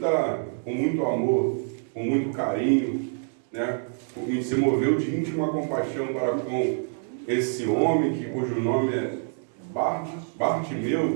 amor, com muito carinho, né? E se moveu de íntima compaixão para com esse homem, cujo nome é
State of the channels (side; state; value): left; silent; digital silence